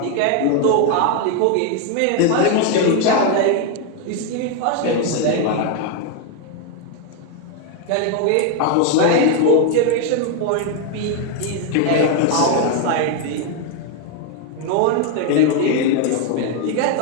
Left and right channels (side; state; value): both; different; correlation 0.01